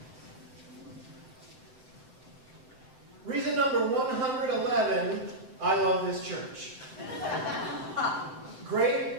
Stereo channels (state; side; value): late; left; 7.8 ms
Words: Reason number 111, I love this church.